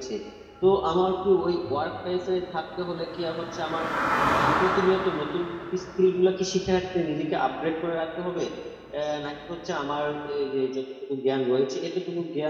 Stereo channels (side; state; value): both; identical; correlation 1.00